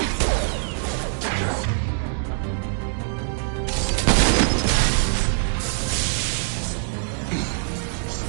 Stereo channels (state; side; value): silent; left; 61 dB below the other